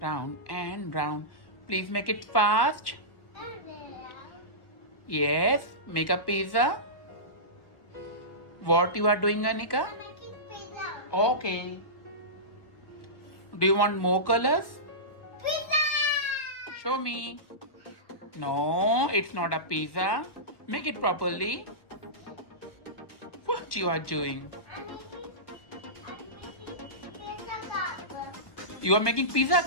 and round. Please make it fast. Yes, make a pizza. What you are doing, Anika? I'm making pizza. Okay. Do you want more colors? Pizza. Show me. No, it's not a pizza. Make it properly. What you are doing? I'm making pizza cup. You are making pizza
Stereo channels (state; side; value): late; right; 1.1 ms